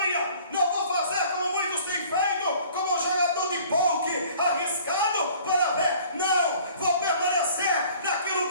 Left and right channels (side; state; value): both; inverted; correlation -0.51